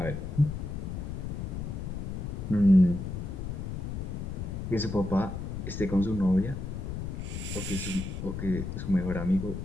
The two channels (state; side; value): noise; left; rumble, 5 dB below the sound